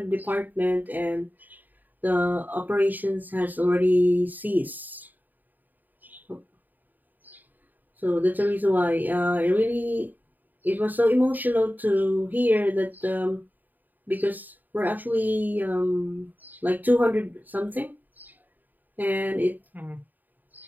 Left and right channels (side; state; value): left; late; 0.087 ms